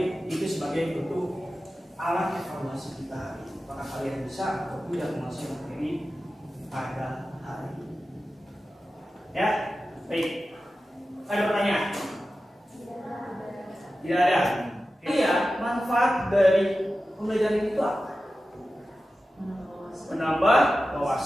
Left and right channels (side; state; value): both; normal; correlation 0.94